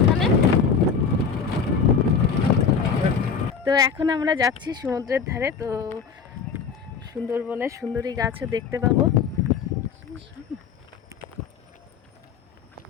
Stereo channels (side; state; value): right; quieter; 6.0 dB